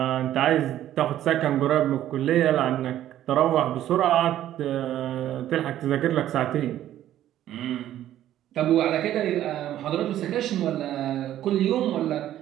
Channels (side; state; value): left; quieter; 12.4 dB